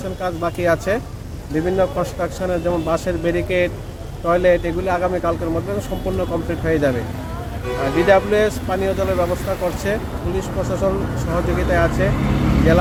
কাজ বাকি আছে। বিভিন্ন কনস্ট্রাকশনের যেমন বাসের ব্যারিকেড, টয়লেট এগুলি আগামীকালকের মধ্যে সম্পূর্ণ কমপ্লিট হয়ে যাবে। ডিডাব্লিউএস পানীয় জলের ব্যবস্থা করছে, পুলিশ প্রশাসন সহযোগিতায় আছে,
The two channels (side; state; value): both; identical; correlation 1.00